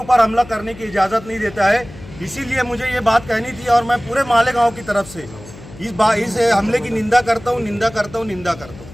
हमला करने की इजाज़त नहीं देता है, इसीलिए मुझे ये बात कहनी थी और मैं पूरे मालेगांव की तरफ से इस हमले की निंदा करता हूँ, निंदा करता हूँ, निंदा करता हूँ।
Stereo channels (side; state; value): left; noise; hum, 17 dB below the sound